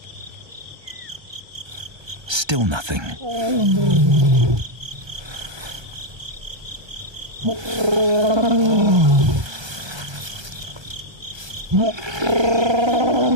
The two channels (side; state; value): left; late; 1.3 ms